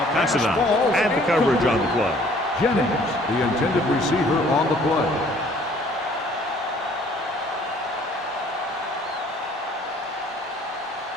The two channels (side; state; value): both; normal; correlation 0.57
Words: Pass it on. And the coverage on the play. Jennings, the intended receiver on the play.